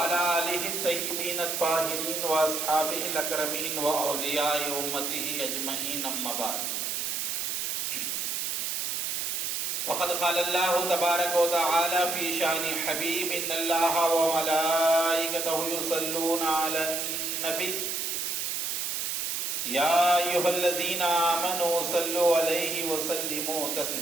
آله الطيبين الطاهرين وأصحابه الأكرمين وأولياء أمته أجمعين أما بعد فقد قال الله تبارك وتعالى في شأن حبيب إن الله وملائكته يصلون على النبي يا أيها الذين آمنوا صلوا عليه وسلموا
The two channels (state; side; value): noise; right; hiss, 1 dB below the sound